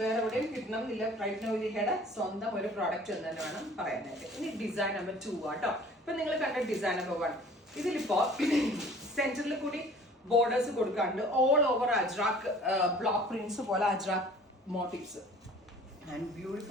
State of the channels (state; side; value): normal; both; correlation 0.49